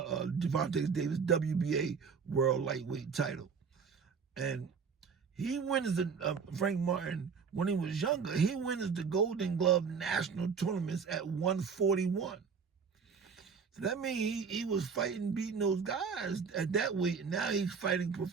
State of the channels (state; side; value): quieter; left; 5.9 dB